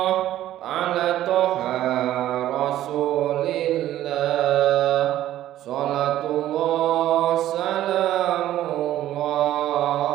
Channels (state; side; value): quieter; left; 13.2 dB